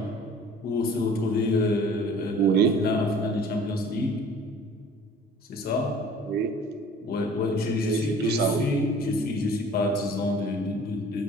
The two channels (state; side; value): normal; both; correlation 0.49